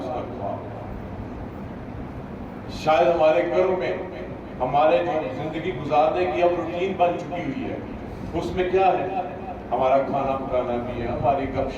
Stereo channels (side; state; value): both; identical; correlation 1.00